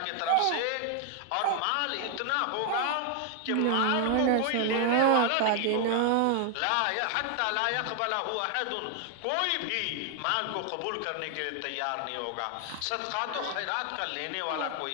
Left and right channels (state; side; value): different; both; correlation 0.00